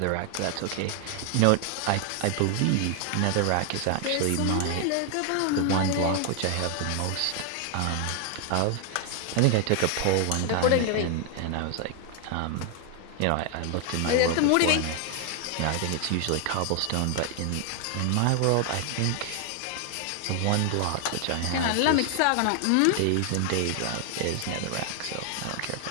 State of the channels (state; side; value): different; both; correlation 0.00